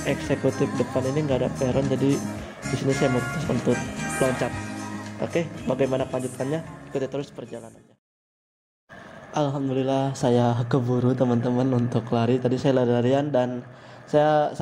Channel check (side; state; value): both; identical; correlation 1.00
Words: eksekutif depan ini nggak ada peron, jadi di sini saya memutuskan untuk loncat. Oke, bagaimana kelanjutannya? Ikuti terus perjalanannya. Alhamdulillah saya keburu teman-teman untuk lari. Tadi saya lari-larian dan saya